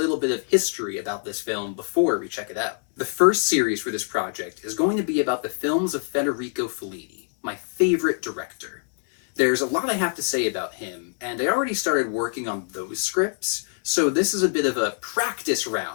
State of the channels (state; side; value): silent; right; 55 dB below the other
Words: bit of history about this film before we check it out. The first series for this project is going to be about the films of Federico Fellini, my favorite director. There's a lot I have to say about him, and I already started working on those scripts, so this is a bit of a practice